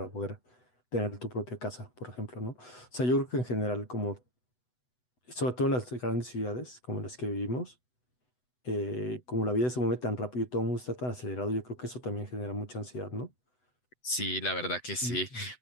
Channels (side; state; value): right; late; 8.0 ms